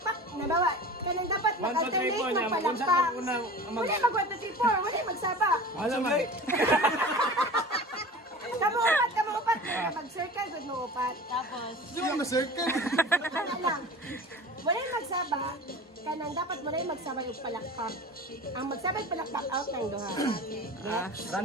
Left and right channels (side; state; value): both; normal; correlation 0.36